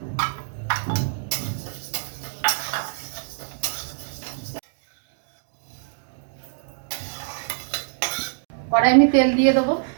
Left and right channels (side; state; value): left; silent; digital silence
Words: কড়াই আমি তেল দিয়ে দেবো।